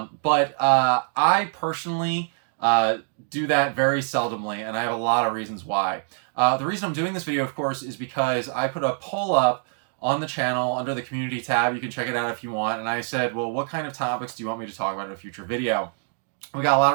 I personally do that very seldomly, and I have a lot of reasons why. The reason I'm doing this video, of course, is because I put a poll up on the channel under the community tab. You can check it out if you want. And I said, well, what kind of topics do you want me to talk about in a future video? We got a lot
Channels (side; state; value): left; silent; 58 dB below the other